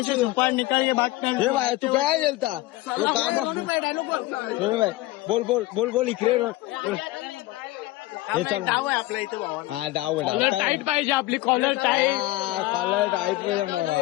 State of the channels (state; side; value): quieter; right; 18.2 dB